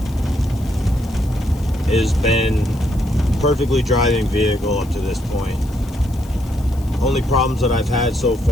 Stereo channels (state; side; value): noise; left; hiss, 23 dB below the sound